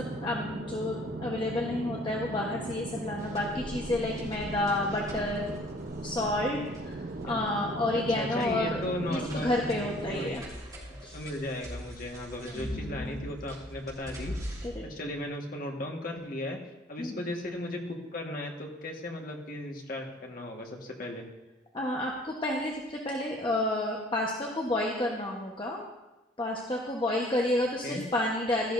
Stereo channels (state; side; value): normal; both; correlation 0.55